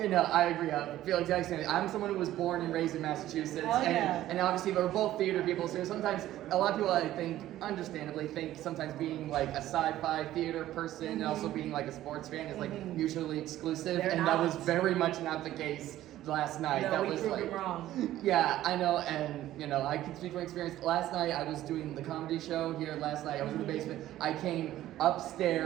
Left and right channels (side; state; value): left; quieter; 13.9 dB